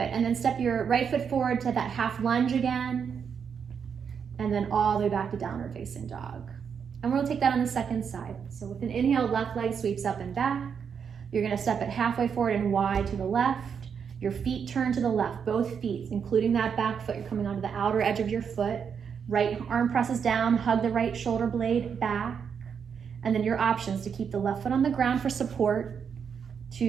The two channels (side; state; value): left; quieter; 6.9 dB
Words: and then step your right foot forward to that half lunge again, and then all the way back to downward facing dog. And we'll take that on the second side. So with an inhale, left leg sweeps up and back. You're gonna step it halfway forward and wide to the left. Your feet turn to the left, both feet, including that back foot. You're coming onto the outer edge of your foot. Right arm presses down, hug the right shoulder blade back. And then your options to keep the left foot on the ground for support,